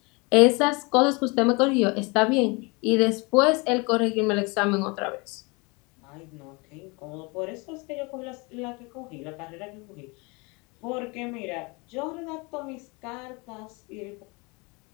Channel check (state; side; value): quieter; right; 28.3 dB